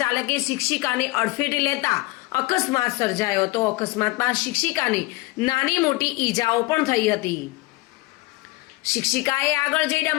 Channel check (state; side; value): quieter; right; 21.3 dB